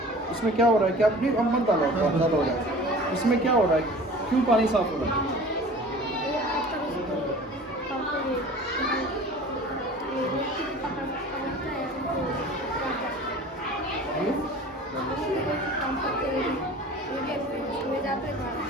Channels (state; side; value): normal; both; correlation 0.43